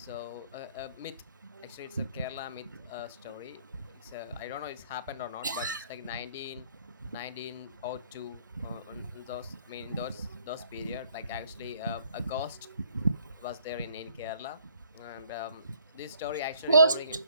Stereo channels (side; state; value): both; inverted; correlation -0.61